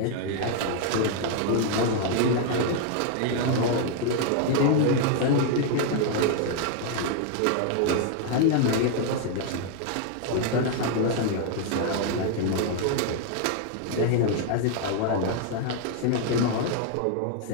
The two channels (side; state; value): both; different; correlation 0.00